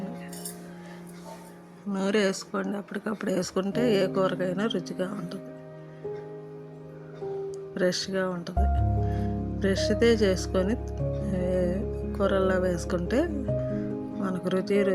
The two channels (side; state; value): both; identical; correlation 1.00